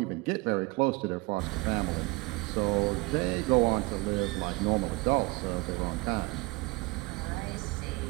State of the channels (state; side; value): quieter; left; 24.5 dB